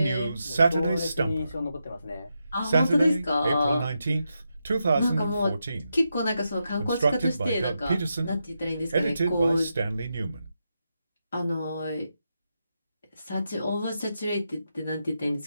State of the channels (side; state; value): both; inverted; correlation -0.85